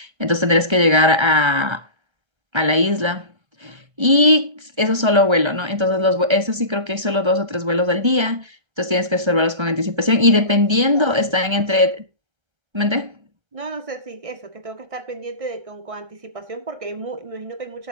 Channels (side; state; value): left; late; 1.3 ms